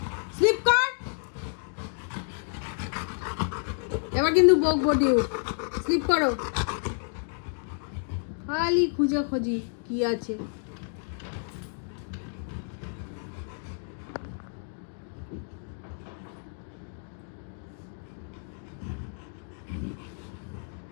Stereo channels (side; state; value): right; silent; 58 dB below the other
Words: স্লিপ কর। এবার কিন্তু বকবো ডিউক, স্লিপ করো। খালি খুঁজে খুঁজি কি আছে।